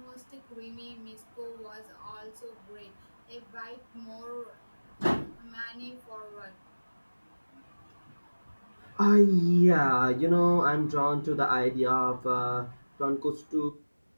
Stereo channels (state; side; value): inverted; both; correlation -1.00